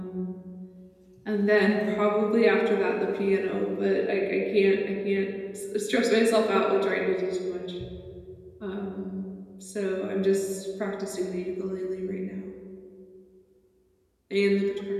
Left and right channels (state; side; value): identical; both; correlation 1.00